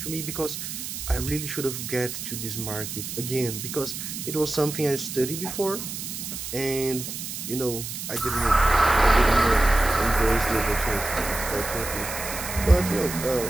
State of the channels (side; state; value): right; noise; hiss, 7 dB below the sound